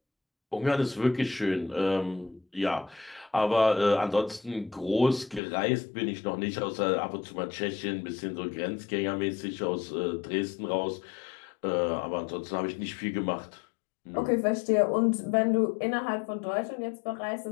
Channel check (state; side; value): drops out; right; at 5.4 s